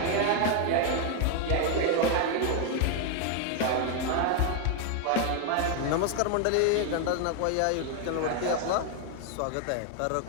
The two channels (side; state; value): both; different; correlation 0.00